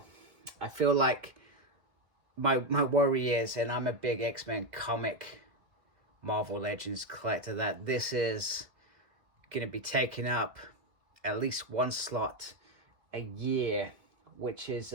I feel like my worry is, and I'm a big X-Men comic Marvel Legends collector, that this is going to be taking up at least one slot a year, which is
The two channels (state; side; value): late; left; 2.1 ms